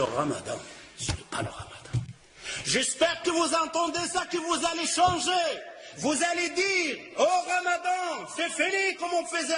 Ramadan. Ce n'est pas le Ramadan. J'espère que vous entendez ça, que vous allez changer. Vous allez dire, oh Ramadan, c'est fini comme on faisait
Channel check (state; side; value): identical; both; correlation 1.00